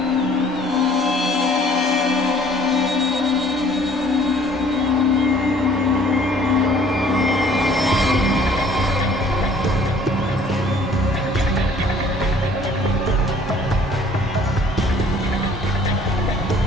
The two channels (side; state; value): both; normal; correlation 0.56